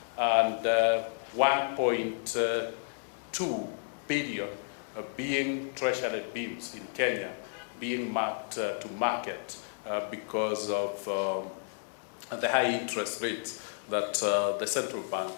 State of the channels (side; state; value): right; silent; 57 dB below the other